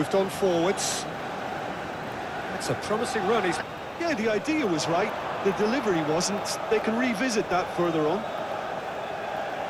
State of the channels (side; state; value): both; identical; correlation 1.00